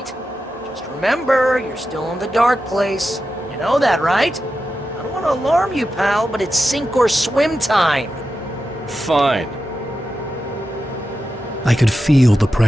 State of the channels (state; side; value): normal; both; correlation 0.90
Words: Just remember, you're still in the dark place. You know that, right? I don't want to alarm you, pal, but it's sink or swim time. Fine. I could feel the